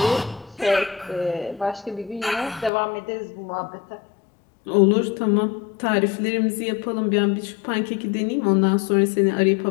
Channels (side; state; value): right; drops out; at 2.7 s